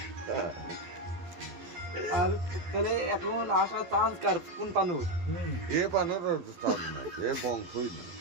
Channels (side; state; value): left; late; 11 ms